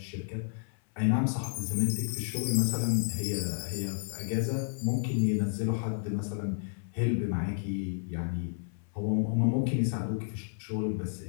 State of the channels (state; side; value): silent; right; 57 dB below the other